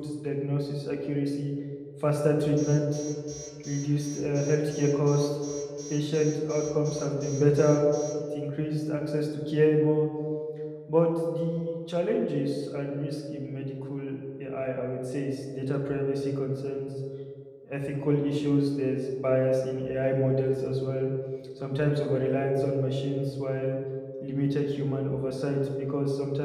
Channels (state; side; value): identical; both; correlation 1.00